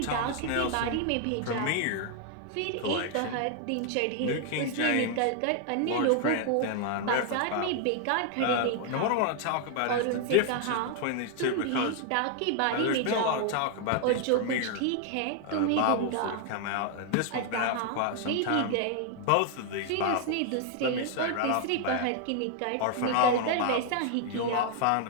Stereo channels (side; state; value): both; different; correlation 0.00